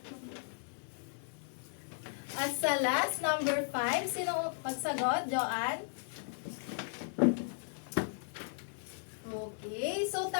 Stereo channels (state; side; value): silent; right; digital silence